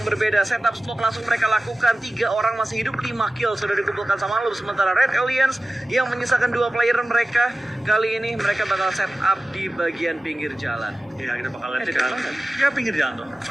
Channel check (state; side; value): normal; both; correlation 0.96